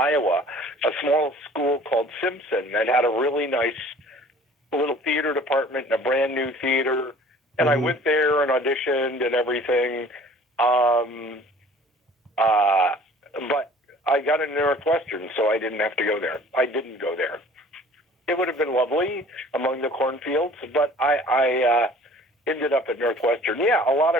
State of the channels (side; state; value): both; normal; correlation 0.49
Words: a small school called Simpson that had a really nice little theater department and a brand new theater. And I went there and auditioned and everything. But I got into Northwestern, so I didn't have to go there. I didn't go there. It would have been lovely among the cornfields, but I ended up at Northwestern. Yeah, a lot